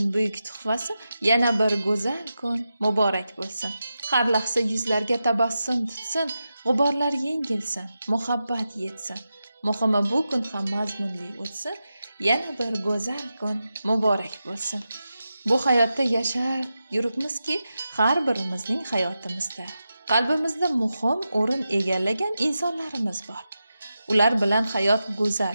buyuk tuhfasi. Yana bir go'zal kun muborak bo'lsin. Har lahza yuzlarga tabassum tutsin, g'uborlar yengilsin, muhabbat yetsin. Muhimi bu kun ham mazmunli o'tsin. Yana bir go'zal kun muborak bo'lsin. Bu hayotda yashar yuribmizki, har birimizning hayotimizda qalbimizda muhim o'rin egallagan insonlarimiz bor. Ular bilan hayot go'zal,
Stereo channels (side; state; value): both; inverted; correlation -0.90